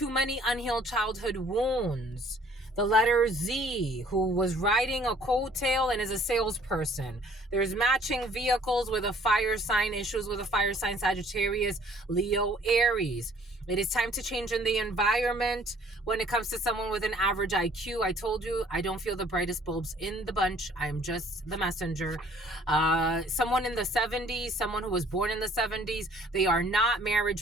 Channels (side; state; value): both; normal; correlation 0.57